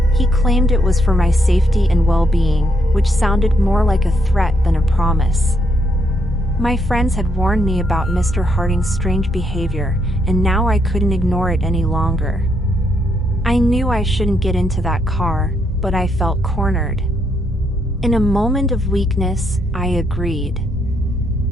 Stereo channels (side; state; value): both; normal; correlation 0.76